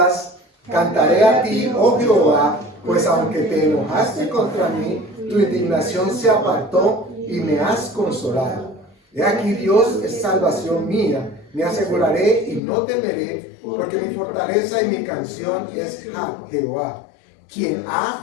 cantaré a ti, oh Jehová, pues aunque te enojaste contra mí, tu indignación se apartó y me has consolado. He aquí Dios es salvación mía, me aseguraré y no temeré, porque mi fortaleza y mi canción es Jehová, quien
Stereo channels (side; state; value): right; drops out; at 12.6 s